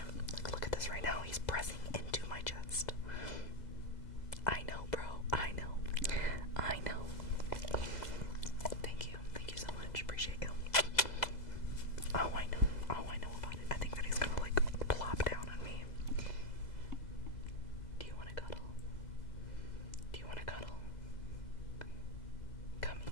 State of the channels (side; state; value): right; late; 2.0 ms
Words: Like, look at this right now. He's pressing into my chest. I know, bro. I know. I know. Thank you so much. Appreciate you. Oh, I know about it. I think that he's gonna like plop down on me. Do you want to cuddle? Do you want to cuddle? Come